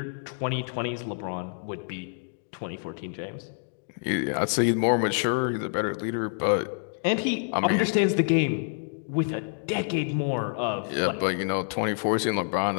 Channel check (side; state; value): right; silent; digital silence